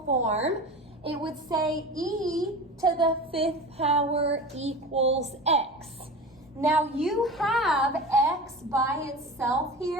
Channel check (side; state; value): both; normal; correlation 0.31